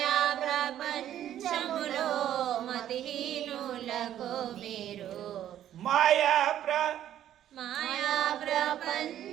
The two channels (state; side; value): quieter; left; 11.4 dB